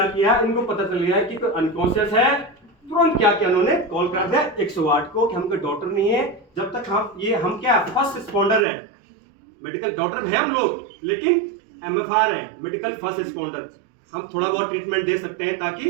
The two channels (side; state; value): left; drops out; at 8.7 s